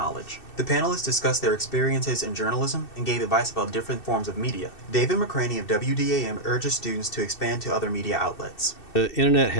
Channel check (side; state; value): right; late; 2.7 ms